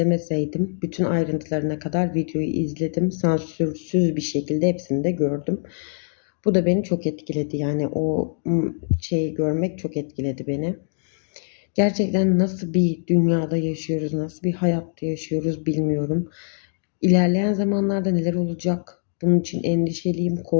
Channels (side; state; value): right; silent; digital silence